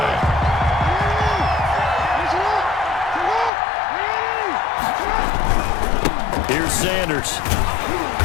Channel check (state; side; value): drops out; right; at 3.5 s